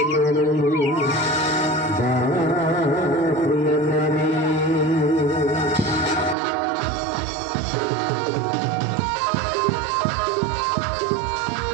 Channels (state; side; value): drops out; left; at 6.4 s